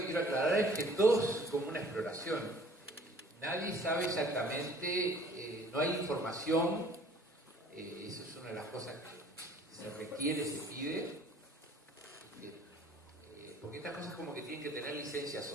quiero aclarar es que todo es como una exploración. Nadie sabe exactamente, no hay información, eso es una de las cosas que se requiere, se pide, porque estas cosas como que tienen que tener licencia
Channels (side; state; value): both; normal; correlation 0.53